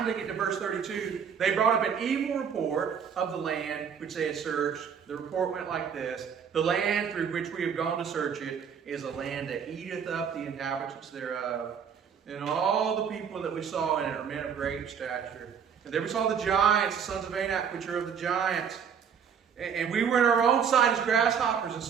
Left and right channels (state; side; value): quieter; left; 7.3 dB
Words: they get to verse 32, they brought up an evil report of the land which they had searched. The report went like this: the land through which we have gone to search it is a land that eateth up the inhabitants thereof. And all the people that we saw in it are men of great stature. And there we saw the giants, the sons of Anak, which are of the giants. And we were in our own sight as grasshoppers, and